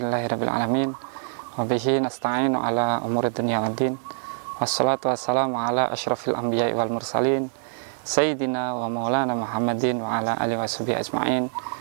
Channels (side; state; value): left; silent; digital silence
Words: alamin. Wa bihi nasta'inu ala umuri dunya waddin. Wassalatu wassalamu ala asyrafil anbiya'i wal mursalin sayyidina wa maulana Muhammadin wa ala alihi washabihi ajma'in.